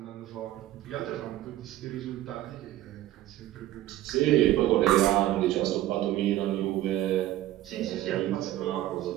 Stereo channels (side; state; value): left; quieter; 14.4 dB